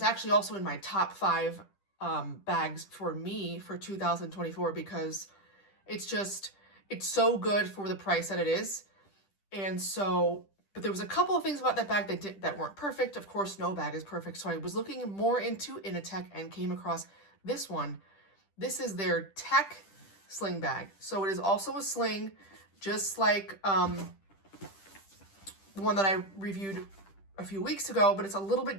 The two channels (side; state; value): right; late; 10 ms